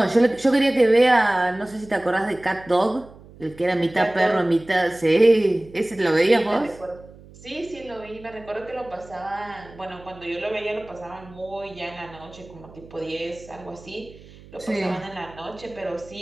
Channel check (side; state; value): right; noise; hum, 21 dB below the sound